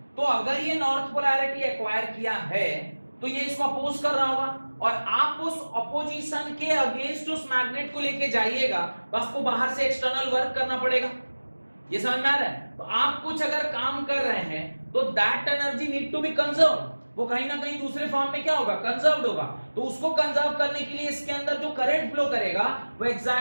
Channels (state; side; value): inverted; both; correlation -1.00